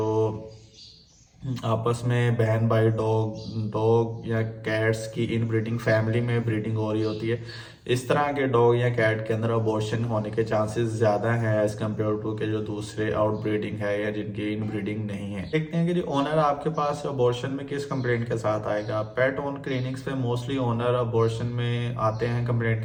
आपस में बहन भाई डॉग डॉग या कैट्स की इनब्रीडिंग फैमिली में ब्रीडिंग हो रही होती है, इस तरह के डॉग या कैट के अंदर अबॉर्शन होने के चांसेस ज़्यादा हैं एज कम्पेयर टू के जो दूसरे आउट ब्रीडिंग है या जिनकी इनब्रीडिंग नहीं है। देखते हैं कि जी ओनर आपके पास अबॉर्शन में किस कंप्लेंट के साथ आएगा। पेट ओन क्लिनिक्स पे मोस्टली ओनर अबॉर्शन में आते हैं कंप्लेंट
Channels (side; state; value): both; identical; correlation 1.00